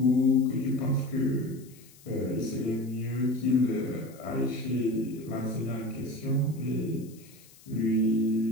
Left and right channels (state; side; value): noise; left; hiss, 24 dB below the sound